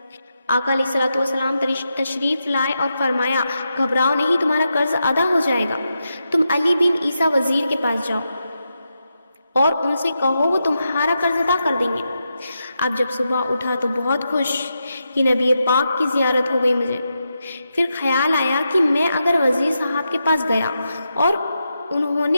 آقا علیہ الصلوۃ والسلام تشریف لائے اور فرمایا گھبراؤ نہیں، تمہارا قرض ادا ہو جائے گا، تم علی بن عیسیٰ وزیر کے پاس جاؤ اور ان سے کہو وہ تمہارا قرض ادا کر دیں گے۔ اب جب صبح اٹھا تو بہت خوش کہ نبی پاک کی زیارت ہو گئی مجھے۔ پھر خیال آیا کہ میں اگر وزیر صاحب کے پاس گیا اور انہوں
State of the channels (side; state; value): both; inverted; correlation -0.86